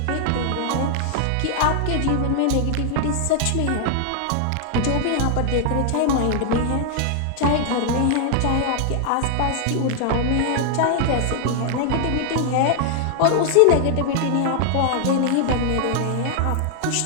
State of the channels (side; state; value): both; different; correlation 0.00